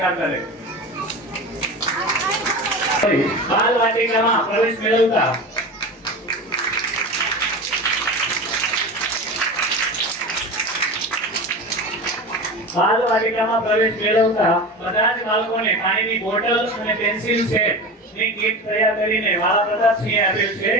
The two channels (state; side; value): normal; both; correlation 0.28